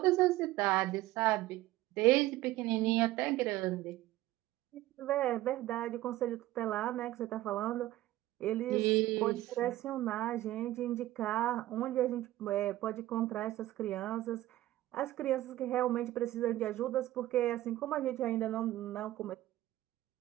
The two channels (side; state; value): left; quieter; 15.8 dB